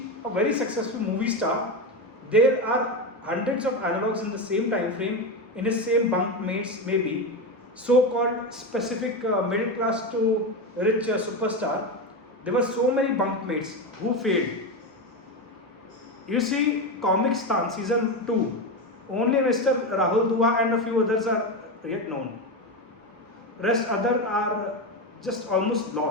a very successful movie star, there are hundreds of analogs in the same time frame, in the same bunkmates, maybe so-called specific middle class to rich superstar. There were so many bunkmates who failed. You see Comic Stan season 2, Only Mr. Rahul Dua and a few others are yet known. Rest other are just almost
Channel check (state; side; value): normal; both; correlation 0.16